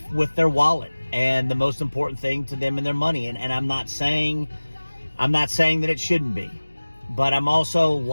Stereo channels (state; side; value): inverted; both; correlation -1.00